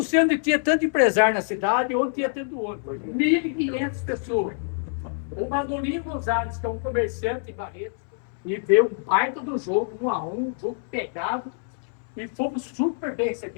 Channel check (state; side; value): silent; right; 61 dB below the other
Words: sei onde tinha tanto empresário na cidade, onde tinha tanto outro. 1.500 pessoas. O Manolino Gonzalez, que é um comerciante em Barretos, e veio um baita do jogo, 1-1, um jogo pegado, e fomos super bem